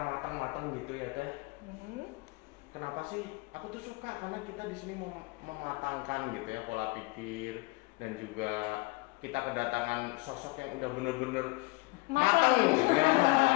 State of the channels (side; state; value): right; quieter; 25.3 dB